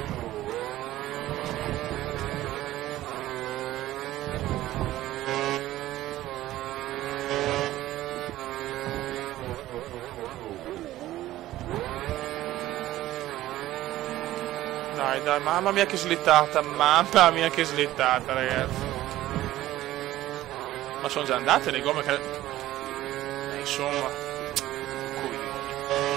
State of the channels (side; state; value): left; quieter; 15.0 dB